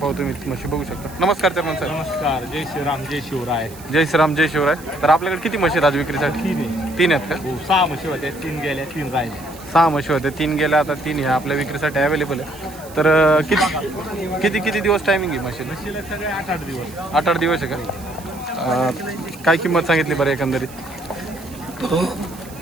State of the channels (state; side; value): noise; right; hiss, 19 dB below the sound